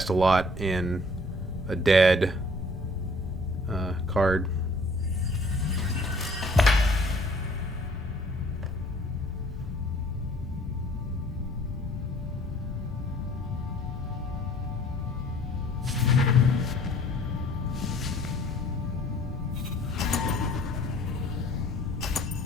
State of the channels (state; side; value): normal; both; correlation 0.55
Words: a lot in a dead card.